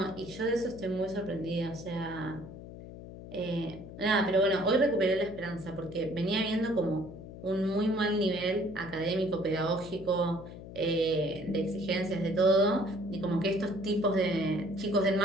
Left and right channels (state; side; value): noise; left; hum, 13 dB below the sound